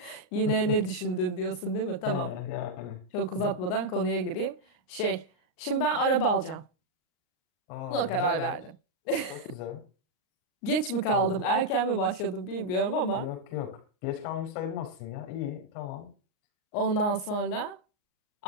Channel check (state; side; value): late; right; 39 ms